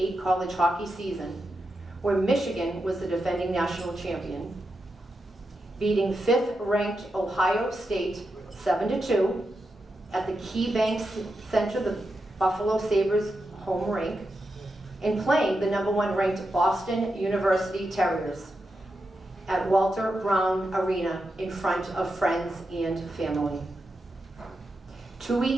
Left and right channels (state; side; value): normal; both; correlation 0.87